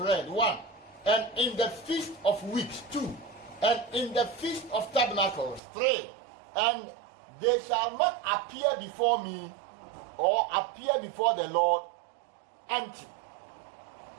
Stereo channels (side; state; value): left; drops out; at 5.6 s